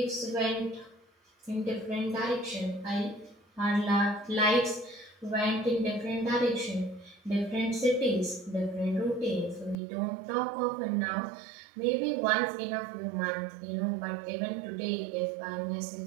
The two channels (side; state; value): left; drops out; at 9.8 s